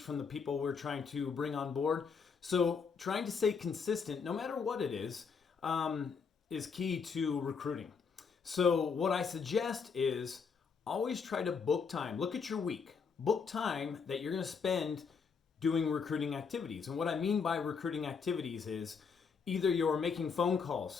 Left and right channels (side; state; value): right; quieter; 5.7 dB